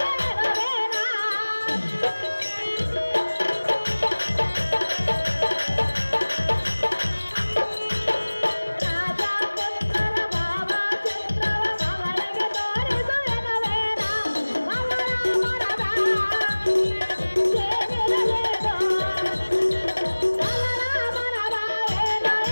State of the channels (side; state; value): both; inverted; correlation -1.00